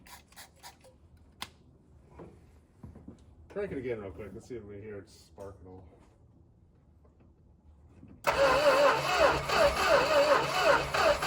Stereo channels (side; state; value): both; identical; correlation 1.00